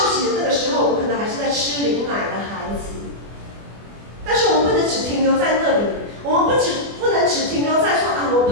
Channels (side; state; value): left; late; 24 ms